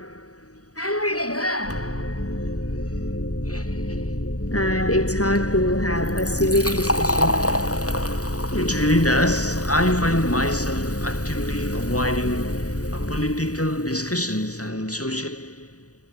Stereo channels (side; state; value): right; late; 0.66 ms